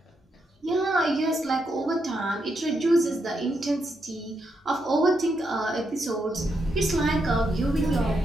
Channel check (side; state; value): both; normal; correlation 0.81